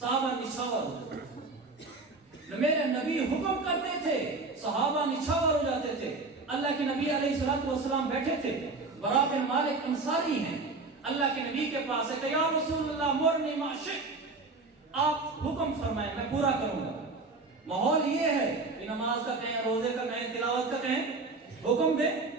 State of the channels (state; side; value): quieter; left; 3.7 dB